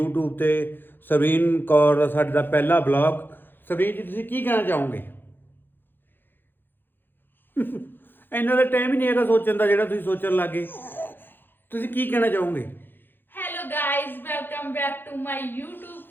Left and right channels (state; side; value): late; right; 0.098 ms